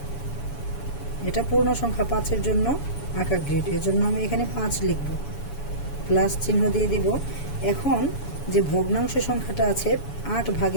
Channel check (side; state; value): right; late; 7.0 ms